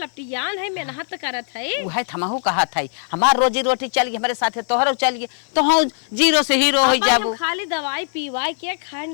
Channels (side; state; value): right; silent; 62 dB below the other